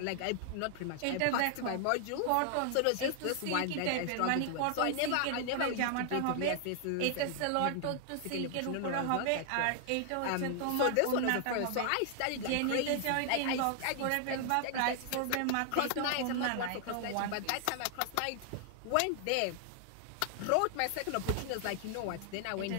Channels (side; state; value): both; different; correlation 0.00